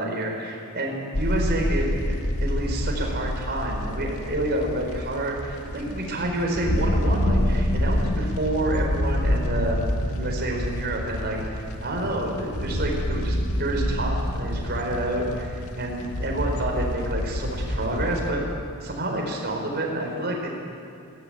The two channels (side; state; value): both; normal; correlation 0.56